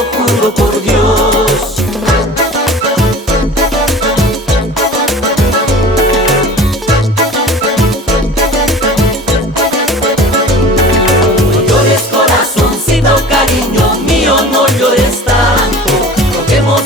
juro por Dios. No llores, corazoncito, cariño mío, no llores tanto. Roguemos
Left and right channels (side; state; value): both; normal; correlation 0.40